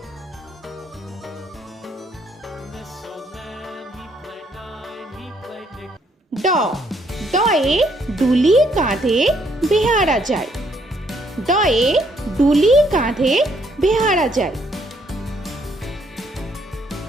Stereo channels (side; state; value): both; normal; correlation 0.69